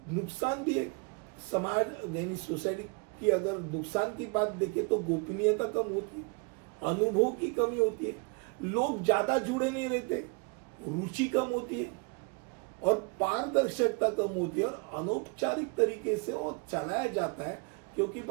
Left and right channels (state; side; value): quieter; left; 32.0 dB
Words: नुकसान भी है समाज यानी सोसाइटी की अगर नुकसान की बात देखें तो गोपनीयता कम होती है, अनुभव की कमी होती है, लोग ज्यादा जुड़े नहीं रहते, रुचि कम होती है और पारदर्शिता कम होती है और अनौपचारिक तरीके से वो चलाया जाता है। क्योंकि